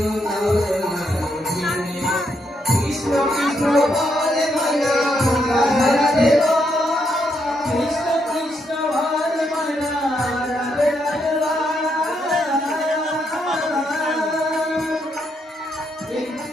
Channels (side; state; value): both; normal; correlation 0.78